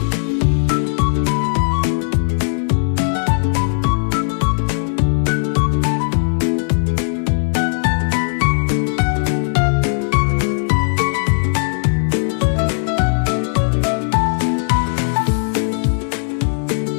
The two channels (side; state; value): right; silent; digital silence